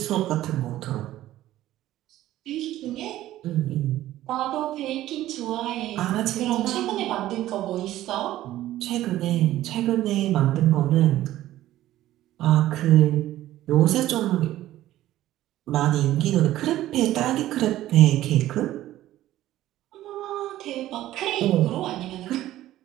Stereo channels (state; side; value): quieter; left; 14.4 dB